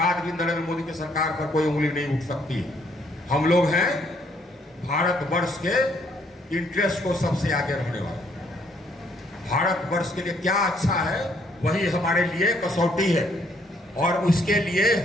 भी नरेंद्र मोदी की सरकार पर कोई उंगली नहीं उठ सकती है। हम लोग हैं भारतवर्ष के इंटरेस्ट को सबसे आगे रखने वाले। भारतवर्ष के लिए क्या अच्छा है वही हमारे लिए कसौटी है, और उसके लिए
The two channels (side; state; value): both; normal; correlation 0.67